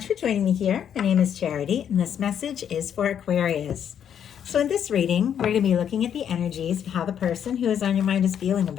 for joining me here. My name is Charity, and this message is for Aquarius. So in this reading, we're going to be looking at the energies of how the person who is on your mind is feeling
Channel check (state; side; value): quieter; right; 8.9 dB